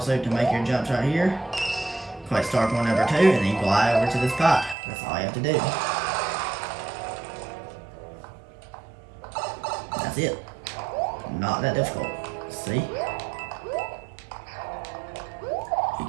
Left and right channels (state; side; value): drops out; left; at 4.8 s